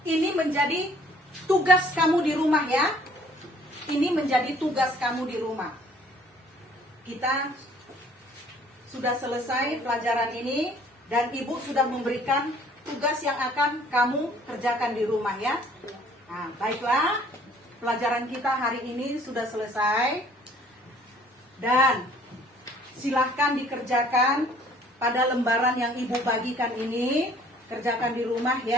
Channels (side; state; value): both; normal; correlation 0.57